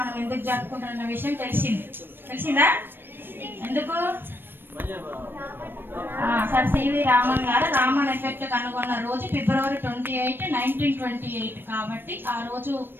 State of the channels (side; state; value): left; late; 0.097 ms